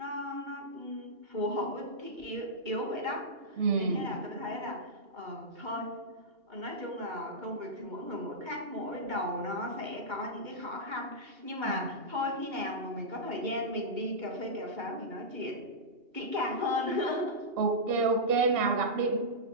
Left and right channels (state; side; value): late; left; 2.8 ms